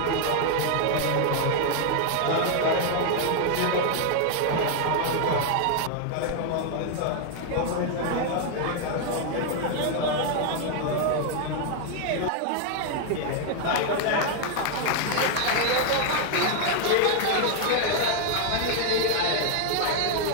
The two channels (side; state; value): both; different; correlation 0.00